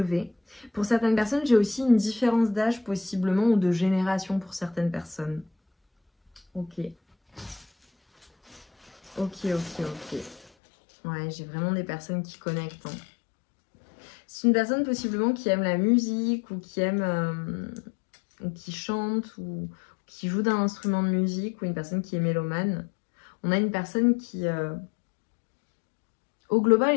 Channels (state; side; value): drops out; right; at 10.5 s